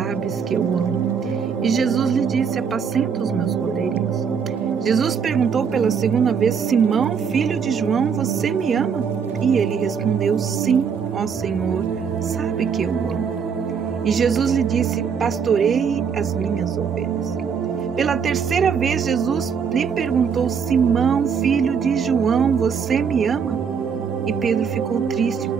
que eu amo." E Jesus lhe disse: "Apacenta os meus cordeirinhos." Jesus perguntou pela 2ª vez: "Simão, filho de João, você me ama?" E ele respondeu: "Sim, ó Senhor, sabe que eu amo." E Jesus lhe disse: "Pastoreie as minhas ovelhas." Pela 3ª vez, Jesus lhe perguntou: "Simão, filho de João, você me ama?" E Pedro ficou triste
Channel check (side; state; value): left; quieter; 6.6 dB